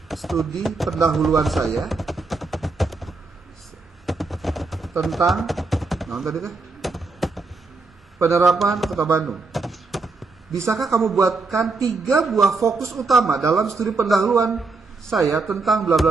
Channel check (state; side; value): quieter; left; 3.8 dB